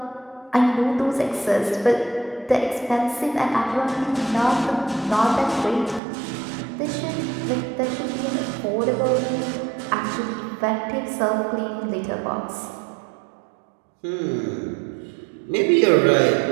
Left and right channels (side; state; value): left; drops out; at 6.0 s